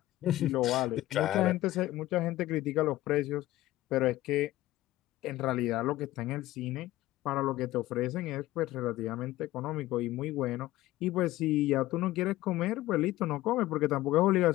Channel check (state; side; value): quieter; right; 16.2 dB